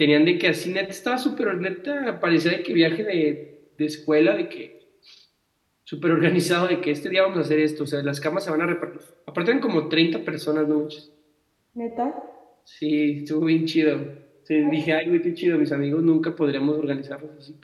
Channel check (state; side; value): identical; both; correlation 1.00